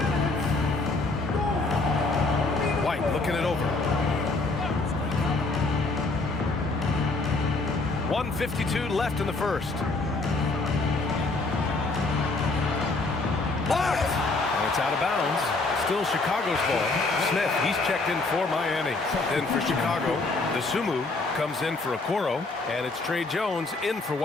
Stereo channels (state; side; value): quieter; right; 3.4 dB